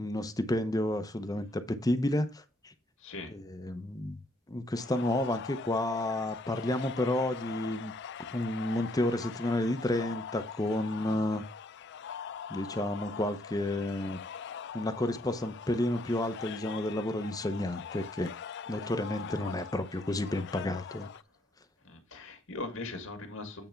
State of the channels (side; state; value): both; normal; correlation 0.70